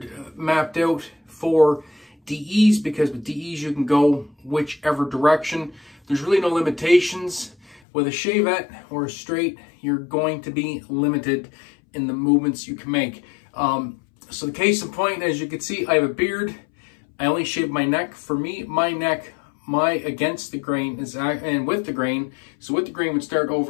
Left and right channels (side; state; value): right; drops out; at 7.8 s